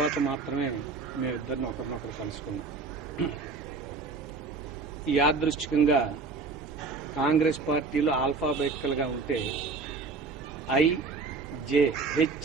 మాత్రమే మేమిద్దరిని ఒకరినొకరు కలుసుకున్నాం. యాదృష్టికంగా కాంగ్రెస్ పార్టీలో ఆల్ఫాబెటికల్గా ఉంటే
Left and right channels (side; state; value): left; quieter; 4.3 dB